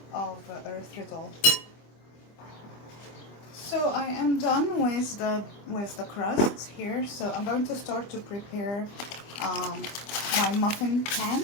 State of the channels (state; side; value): late; right; 25 ms